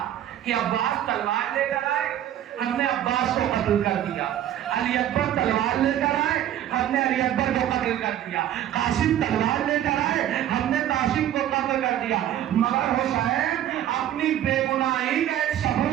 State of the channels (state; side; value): quieter; left; 11.6 dB